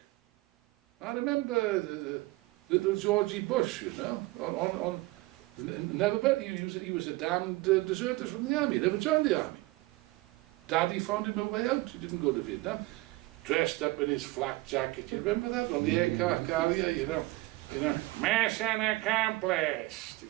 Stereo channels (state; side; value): quieter; left; 20.4 dB